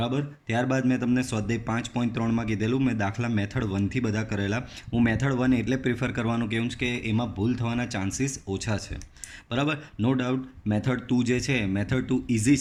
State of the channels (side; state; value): both; identical; correlation 1.00